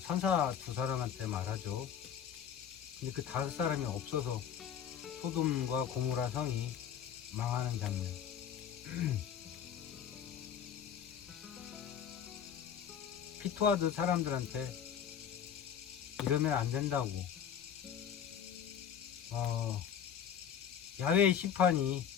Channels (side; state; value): right; quieter; 8.5 dB